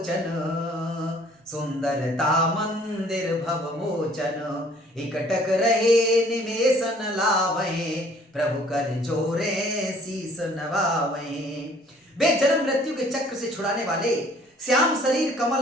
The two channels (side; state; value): both; normal; correlation 0.57